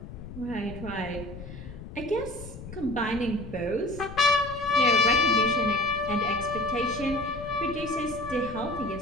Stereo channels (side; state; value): left; noise; rumble, 13 dB below the sound